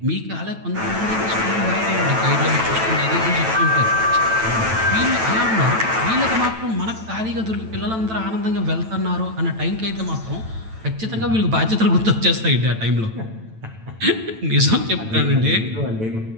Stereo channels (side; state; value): left; late; 9.1 ms